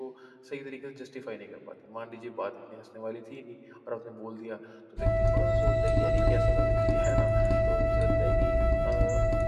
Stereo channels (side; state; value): both; identical; correlation 1.00